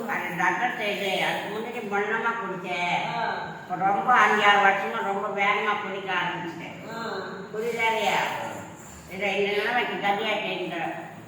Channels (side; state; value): both; identical; correlation 1.00